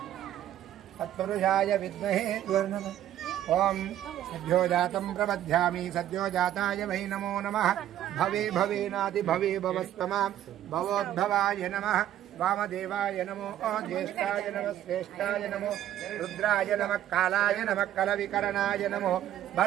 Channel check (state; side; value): quieter; left; 11.9 dB